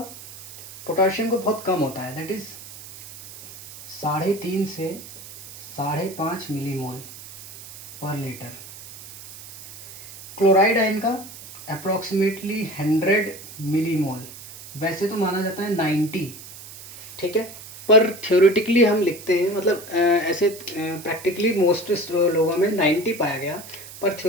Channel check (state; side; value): noise; right; hiss, 15 dB below the sound